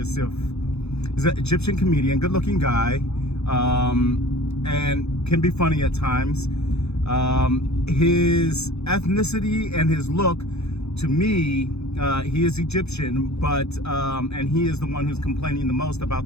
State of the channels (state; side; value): late; right; 0.80 ms